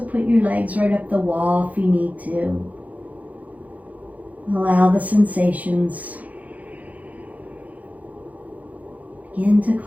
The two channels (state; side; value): late; left; 0.075 ms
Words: your legs right up the wall if you need to. Allow the sensations. Begin to